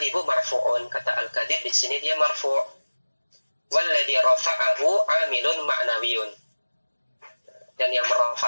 marfu'un, kata al-kadhib di sini dia marfu'. Walladhi rafa'ahu amilun ma'nawiyun, dan yang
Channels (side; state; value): both; inverted; correlation -1.00